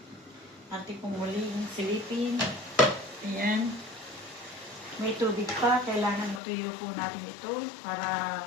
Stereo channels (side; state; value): right; drops out; at 6.4 s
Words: Atin po muli yung silipin. Ayan. May tubig pa. Kailangan matuyo po natin ito para